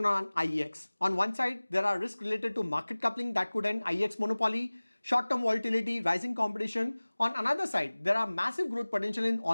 on IEX. On one side, there are risks related to market coupling that could end IEX monopoly, short-term volatility, rising competition. On another side, there are massive growth potential in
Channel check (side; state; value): both; inverted; correlation -1.00